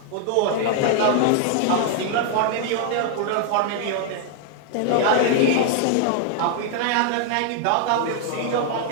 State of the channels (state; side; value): different; both; correlation 0.00